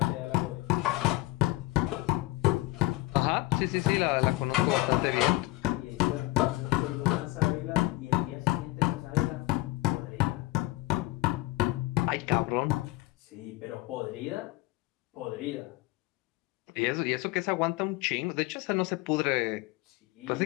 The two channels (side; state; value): right; quieter; 19.6 dB